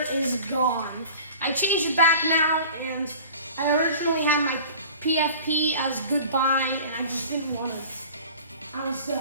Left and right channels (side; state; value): both; inverted; correlation -0.42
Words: is Gone. I changed it back now, and I originally had my PFP as Goodbye, and I just didn't want it. I was done.